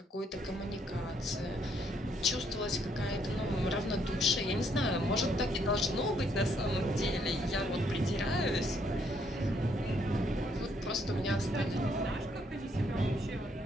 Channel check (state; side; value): normal; both; correlation 0.70